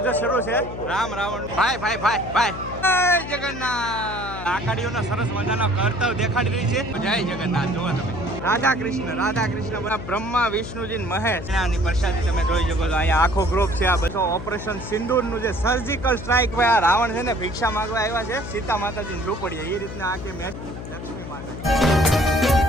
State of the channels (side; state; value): left; noise; hum, 9 dB below the sound